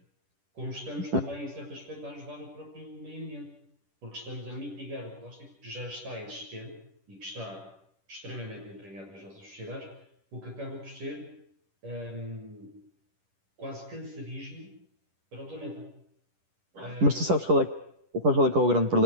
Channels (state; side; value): late; left; 10 ms